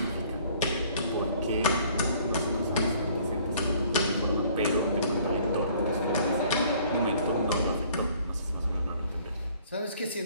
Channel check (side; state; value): both; inverted; correlation -0.57